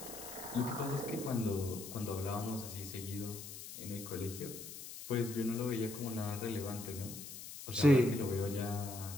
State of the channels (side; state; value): left; noise; hiss, 11 dB below the sound